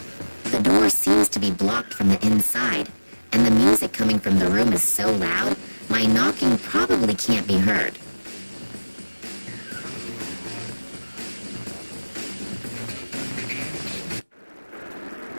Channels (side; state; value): both; inverted; correlation -1.00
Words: The door seems to be blocked from the inside, and the music coming from the room is so loud, my knocking probably can't be heard.